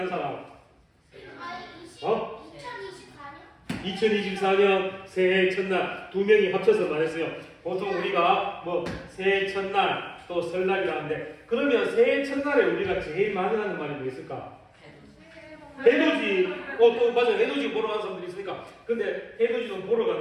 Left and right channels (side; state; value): both; identical; correlation 1.00